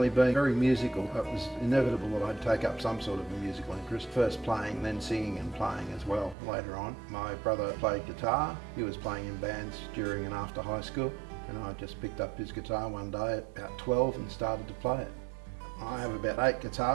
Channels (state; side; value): drops out; left; at 6.4 s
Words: being very musical, it was inevitable that I'd take up some sort of a musical interest. First playing, then singing and playing as well later on. My brother played guitar. He was playing in bands during and after high school, and I just picked up his guitar one day at about 12 and started to play it. I have about 8